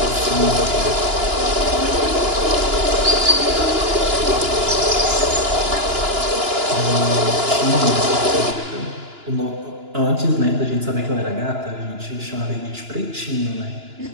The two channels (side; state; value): left; late; 2.9 ms